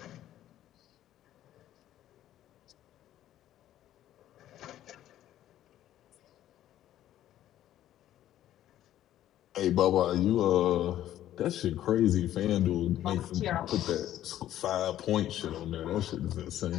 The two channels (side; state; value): right; quieter; 12.5 dB